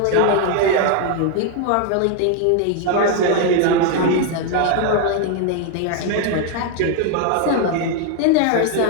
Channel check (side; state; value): both; different; correlation 0.01